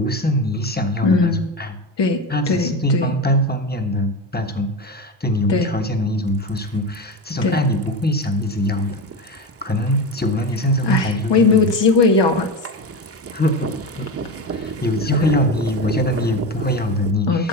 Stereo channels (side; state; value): both; normal; correlation 0.21